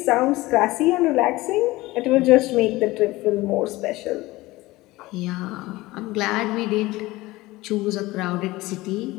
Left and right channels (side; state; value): right; quieter; 19.5 dB